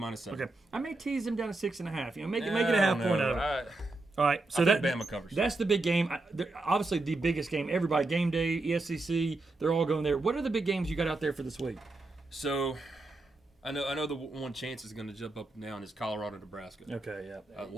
Okay. I may tease them down to 6.5. Make it a half point out of it. All right, so I think Bama covers. That's the big game. Obviously, the biggest game. Everybody, game day, ESCC, they're all going there. What are the big games you got out there for this week? So, I know the one chance is going to jump up and down is Colorado, Nebraska. Okay, yeah.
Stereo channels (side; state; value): left; quieter; 3.1 dB